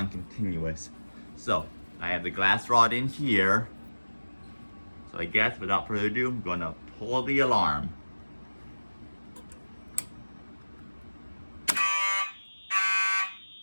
continuous. So I have the glass rod in here. So I guess without further ado, I'm gonna pull the alarm.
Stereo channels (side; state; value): both; inverted; correlation -1.00